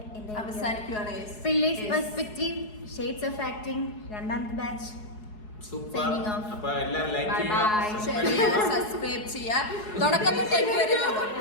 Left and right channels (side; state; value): right; late; 4.7 ms